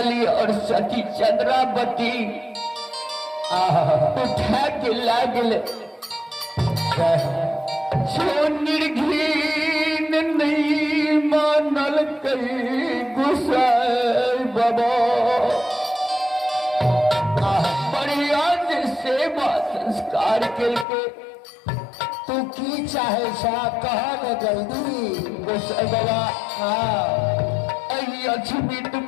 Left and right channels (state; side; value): drops out; right; at 20.9 s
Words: और सती चंद्रावती उठा के लागल जो निर्घीन नहीं मानल कई गोसाई बाबा बढ़िया से सेवा संस्कार करके तू की चाहे सा कहा न जल्दी गोसाई बाबा हाँ